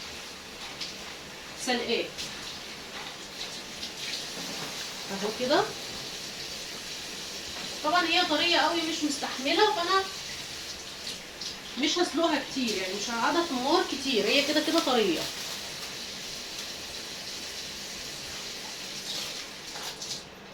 سلقاه اهو كده. طبعا هي طريه قوي مش مستحمله، فانا مش هسلقها كتير، يعني مش هقعدها في النار كتير، هي كده كده طريه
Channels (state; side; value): identical; both; correlation 1.00